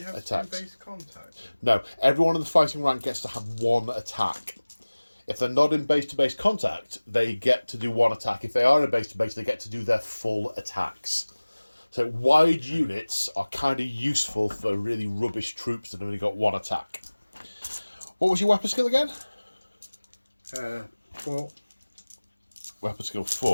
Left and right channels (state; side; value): inverted; both; correlation -1.00